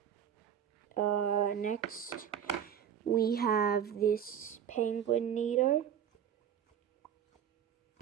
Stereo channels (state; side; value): quieter; left; 9.0 dB